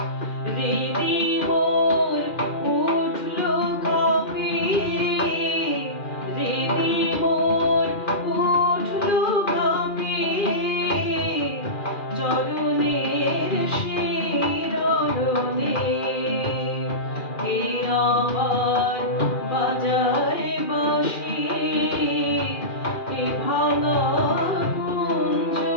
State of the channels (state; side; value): late; right; 2.4 ms